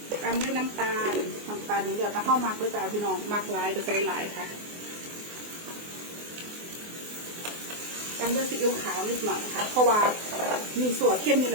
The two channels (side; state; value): left; late; 24 ms